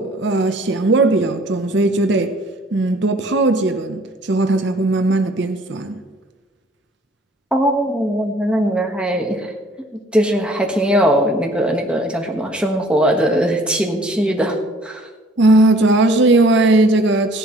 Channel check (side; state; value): both; normal; correlation 0.55